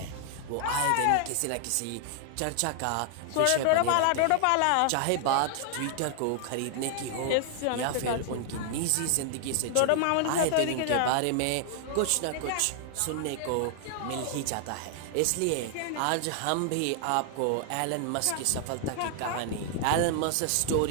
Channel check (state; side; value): different; both; correlation 0.00